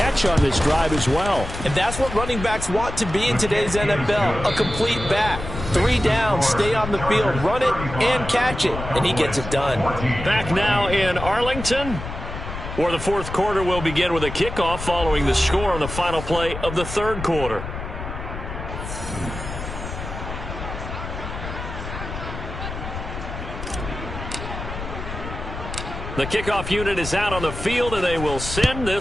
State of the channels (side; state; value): left; noise; rumble, 8 dB below the sound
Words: on this drive as well. And that's what running backs want to be in today's NFL, a complete back. 3 downs, stay on the field, run it, and catch it. And he gets it done. Back now in Arlington, where the fourth quarter will begin with a kickoff following the score on the final play of the third quarter. The kickoff unit is out on the field, and they will send